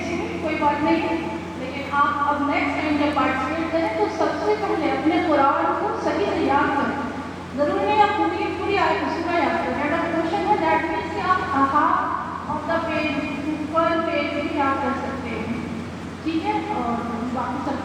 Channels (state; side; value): identical; both; correlation 1.00